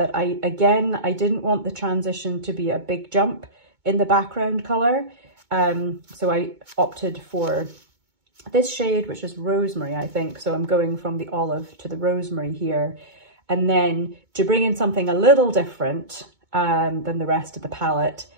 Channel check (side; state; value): left; late; 2.2 ms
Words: I didn't want the transition to be a big jump in the background colour. So I opted for this shade, which is rosemary, I think. So I'm going from the olive to the rosemary here. And then to bring in something a little different than the rest of the palette,